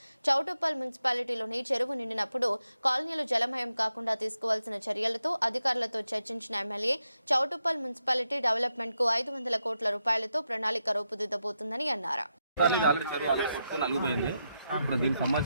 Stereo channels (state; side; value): inverted; both; correlation -0.85